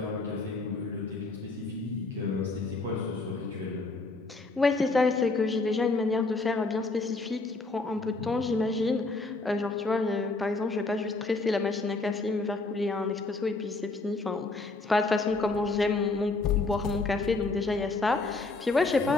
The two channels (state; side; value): quieter; right; 3.4 dB